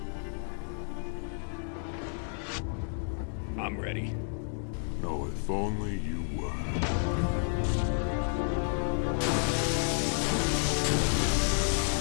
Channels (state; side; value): silent; right; 56 dB below the other